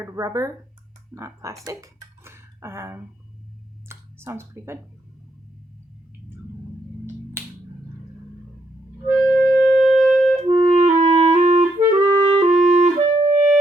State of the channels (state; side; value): normal; both; correlation 0.76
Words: rubber, not plastic. Sounds pretty good.